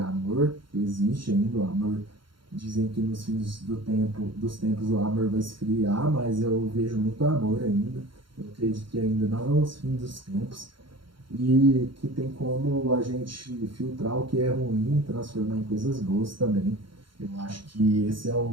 que existe ainda, o amor. Dizem que nos fins dos tempos o amor vai esfriar, mas eu vejo muito amor ainda. Eu acredito que ainda não é os fins dos tempos e que tem como a gente filtrar o que é ruim e transformar em coisas boas também. Eu acho que esse é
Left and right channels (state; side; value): late; left; 0.73 ms